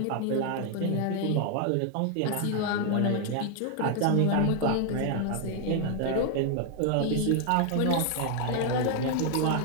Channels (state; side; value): different; both; correlation 0.00